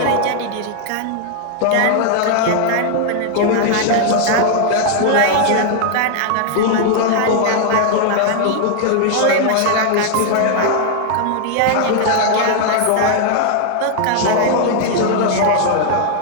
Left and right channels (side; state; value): both; different; correlation 0.00